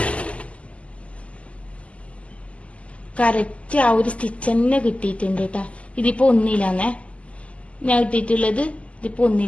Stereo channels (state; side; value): late; right; 0.062 ms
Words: കറക്റ്റ് ആ ഒരു സ്റ്റിച്ച് തന്നെ കിട്ടിയിട്ടുണ്ട് കേട്ടാ. ഇതിപ്പോ 1 ഞാൻ ഇട്ടിട്ടുള്ളത്. ഇതിപ്പോ